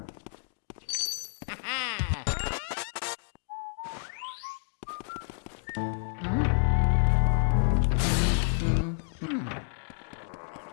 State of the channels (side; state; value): right; silent; digital silence